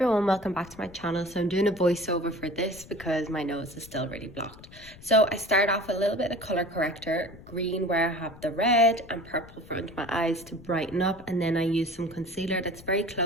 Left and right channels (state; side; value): noise; left; rumble, 20 dB below the sound